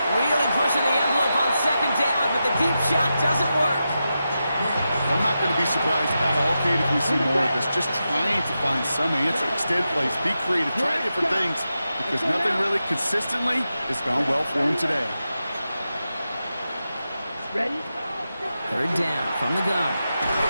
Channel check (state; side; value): inverted; both; correlation -0.89